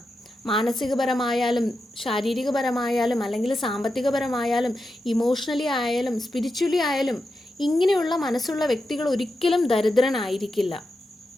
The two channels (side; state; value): both; normal; correlation 0.89